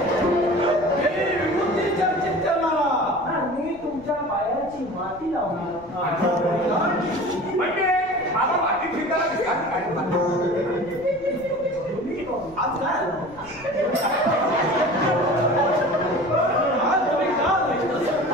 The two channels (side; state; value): left; noise; rumble, 22 dB below the sound